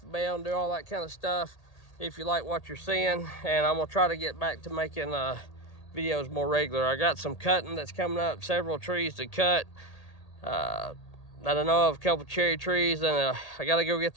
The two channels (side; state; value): right; late; 1.8 ms